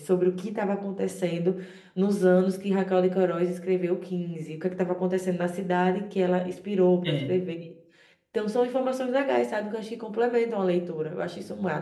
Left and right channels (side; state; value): both; identical; correlation 1.00